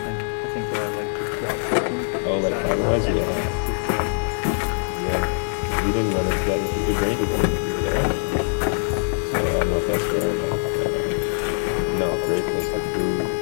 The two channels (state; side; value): silent; right; 63 dB below the other